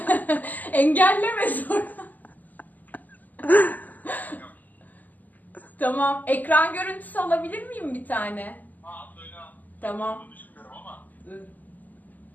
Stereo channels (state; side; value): late; right; 0.082 ms